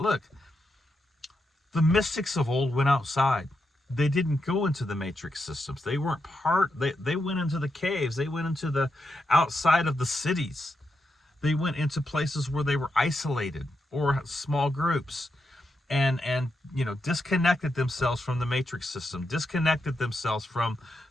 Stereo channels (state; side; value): normal; both; correlation 0.84